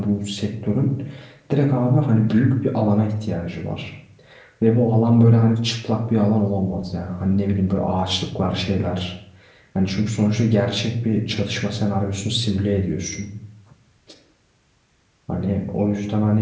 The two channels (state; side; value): identical; both; correlation 1.00